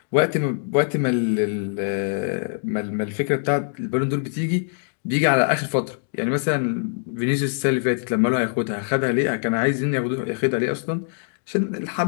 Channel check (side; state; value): right; silent; digital silence